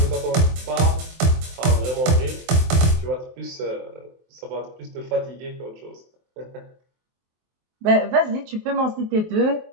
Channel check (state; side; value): late; left; 23 ms